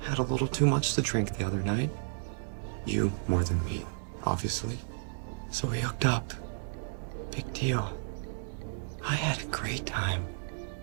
had a little too much to drink the other night. You more than me, obviously. So we hooked up. Big deal. I had a great time.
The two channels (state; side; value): silent; left; digital silence